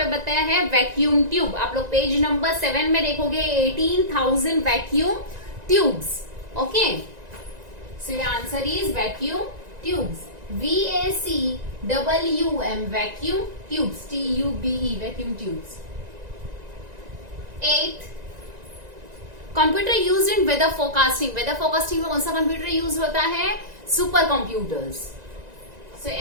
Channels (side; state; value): left; late; 1.9 ms